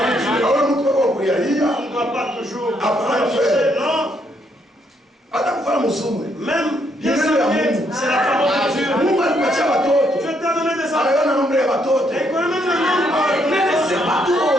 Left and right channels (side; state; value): both; normal; correlation 0.73